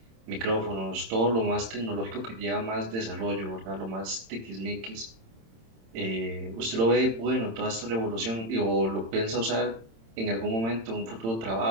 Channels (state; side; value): late; left; 26 ms